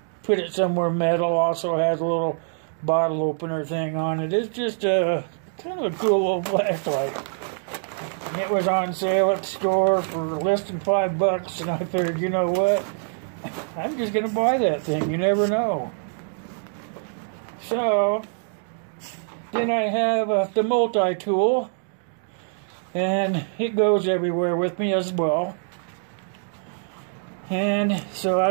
put it somewhere metal. Also has a little bottle opener thing on it. It's just a kind of a cool little flashlight. It was on sale at the store for less than $5, and I figured, you know what? I'm just going to buy that thing. You never know. So, then I have the multi-tool, and it goes everywhere with me as well. And so I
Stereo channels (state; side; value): silent; left; digital silence